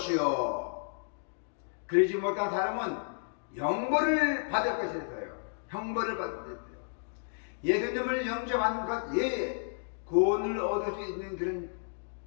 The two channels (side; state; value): right; silent; digital silence